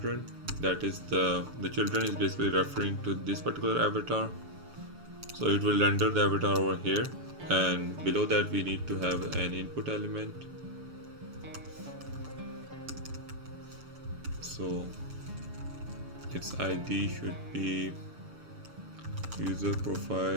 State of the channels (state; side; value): late; left; 6.8 ms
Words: That is the children is basically referring to this particular avatar, so it will render the avatar over here, and below that we need to have an input element. So its ID should be user